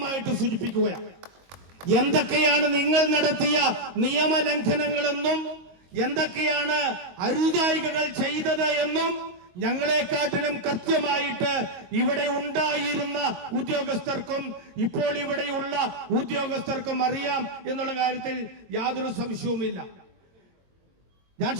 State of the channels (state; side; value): late; left; 22 ms